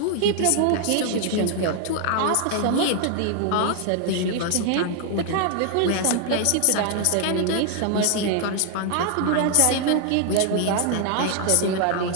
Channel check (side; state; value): both; different; correlation 0.00